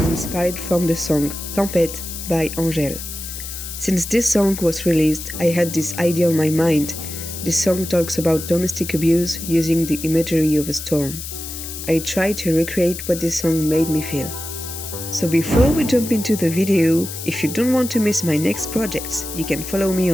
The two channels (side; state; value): left; noise; hiss, 9 dB below the sound